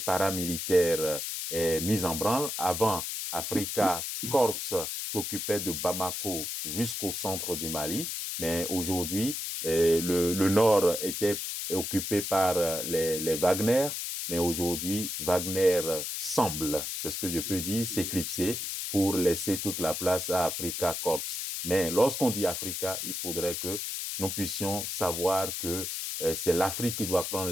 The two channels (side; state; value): left; noise; hiss, 4 dB below the sound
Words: paramilitaire est mis en branle. Avant, Africa Corps s'occupait de Bamako jusqu'au centre du Mali, mais aujourd'hui, le nord était occupé par les Wagner, mais aujourd'hui, Wagner semble, c'est ce que je peux dire, s'éclipser pour laisser toute la place à Africa Corps. Mais lorsqu'on dit Africa, il faudrait que nous puissions savoir que c'est l'Afrique qui doit prendre